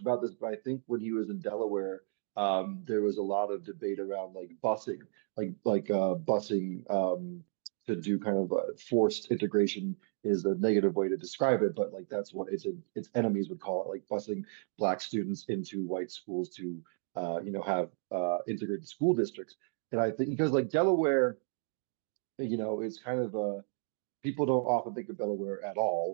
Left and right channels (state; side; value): silent; left; 56 dB below the other